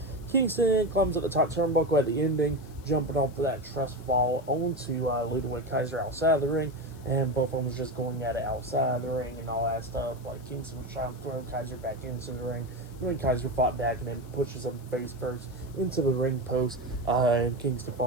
Kingston climbs up the top turnbuckle at the ending, jumping off of that trust fall onto Ludwig Kaiser outside of the ring. And both of them was just going at it outside of the ring and all that stuff. Like, Kingston was trying to throw Kaiser back into the ring. And then Kaiser fought back and then pushes him face first into the ring post. And Kingston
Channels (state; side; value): noise; left; hiss, 25 dB below the sound